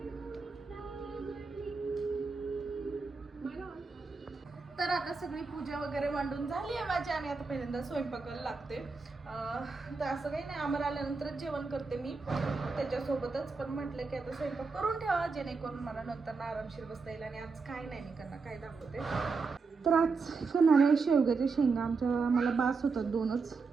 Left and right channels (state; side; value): quieter; left; 4.5 dB